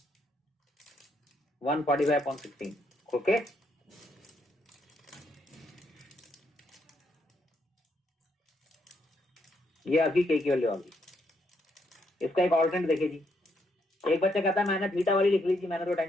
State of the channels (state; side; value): normal; both; correlation 0.75